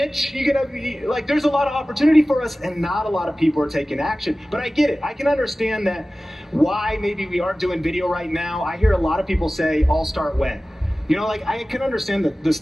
You gotta be, like, there's a lot of opportunity for us, and not a lot of people are taking action. But I get it. I can understand that why maybe we aren't doing video right now. I hear a lot of people say, I'll start when. You know, like, I can understand that the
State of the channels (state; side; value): normal; both; correlation 0.97